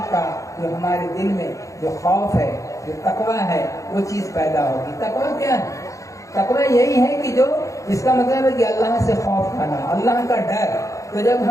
کا جو ہمارے دل میں جو خوف ہے، جو تقویٰ ہے، وہ چیز پیدا ہوگی۔ تقویٰ کیا ہے؟ تقویٰ یہی ہے کہ جو اس کا مطلب ہے کہ اللہ سے خوف کھانا، اللہ کا ڈر۔ تو جب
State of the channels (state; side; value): late; right; 0.15 ms